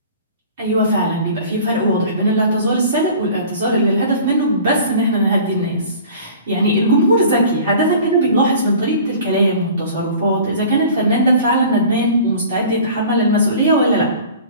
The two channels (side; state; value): both; inverted; correlation -0.44